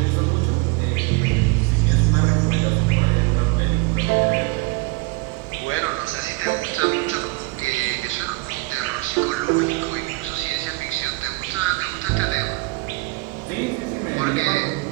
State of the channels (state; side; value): quieter; left; 24.6 dB